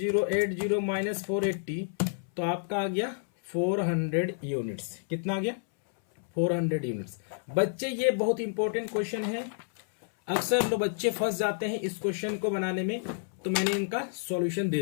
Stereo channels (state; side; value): silent; right; 58 dB below the other